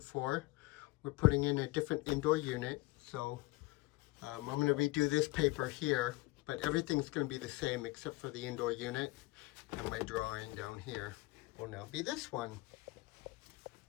for. We're putting in a different indoor unit. So I'm going to redo this paper here, but everything's going to be the same except for the indoor unit. And my drawing down here will now be this one.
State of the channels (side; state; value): right; quieter; 21.7 dB